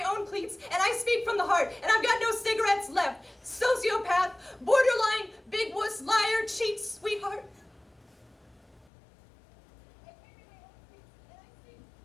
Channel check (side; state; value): right; drops out; at 8.8 s